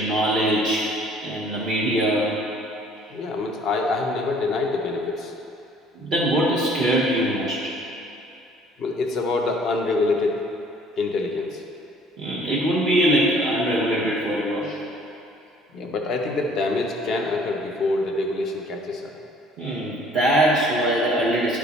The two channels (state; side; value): normal; both; correlation 0.56